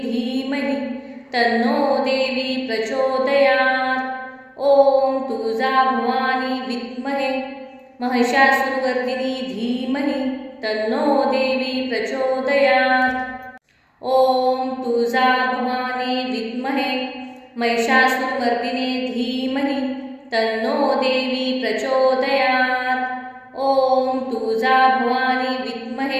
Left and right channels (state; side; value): identical; both; correlation 1.00